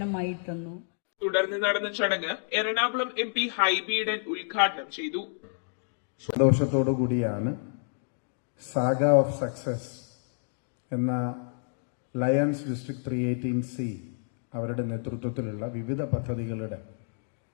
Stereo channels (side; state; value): right; silent; digital silence